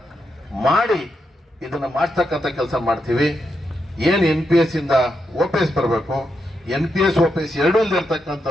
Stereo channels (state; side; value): normal; both; correlation 0.84